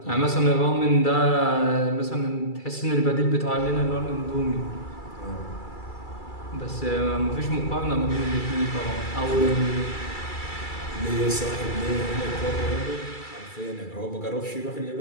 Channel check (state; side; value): late; right; 2.3 ms